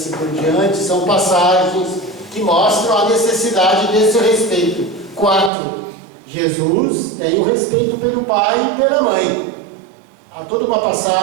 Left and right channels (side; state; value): left; drops out; at 5.5 s